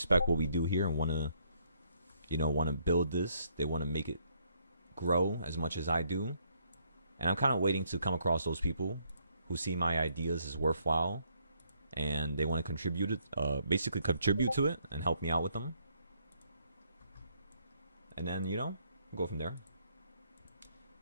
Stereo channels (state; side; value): inverted; both; correlation -0.70